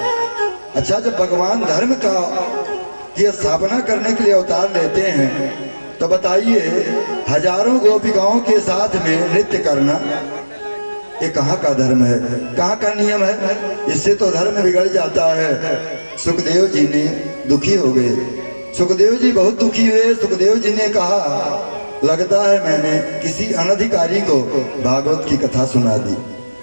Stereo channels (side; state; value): both; inverted; correlation -1.00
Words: अच्छा, जब भगवान धर्म का की स्थापना करने के लिए अवतार लेते हैं तो बताइए, हजारों गोपिकाओं के साथ में नृत्य करना ये कहाँ का धर्म है, कहाँ का नियम है? इससे तो धर्म बिगड़ जाता है। सुखदेव जी ने दुखी हो गए। सुखदेव जी बहुत दुखी हुए। सुखदेव जी ने कहा, लगता है मैंने किसी अनधिकारी को भागवत की कथा सुना दी।